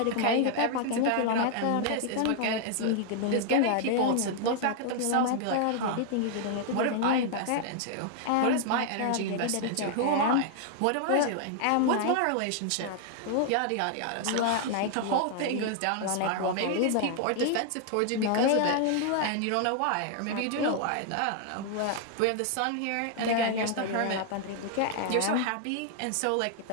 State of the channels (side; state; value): both; different; correlation 0.00